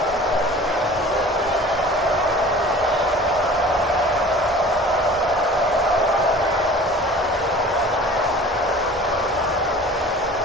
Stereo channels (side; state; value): both; normal; correlation 0.43